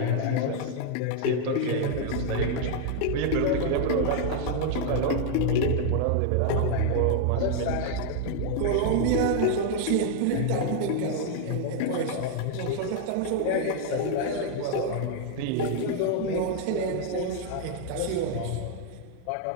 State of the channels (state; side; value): different; both; correlation 0.00